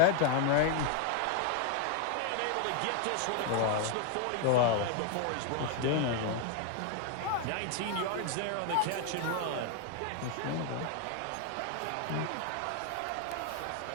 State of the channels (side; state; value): both; different; correlation 0.00